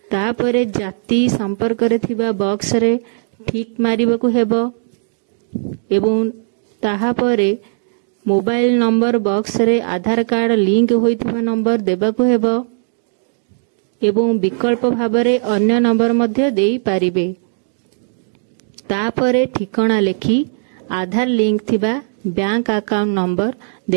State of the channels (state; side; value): silent; left; digital silence